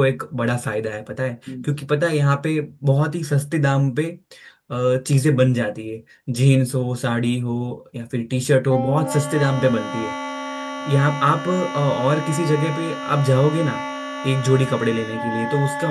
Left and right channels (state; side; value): identical; both; correlation 1.00